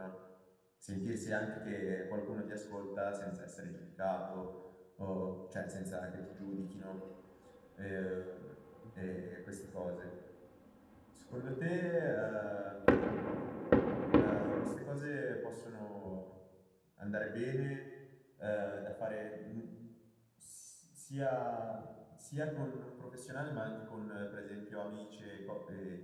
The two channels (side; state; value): both; identical; correlation 1.00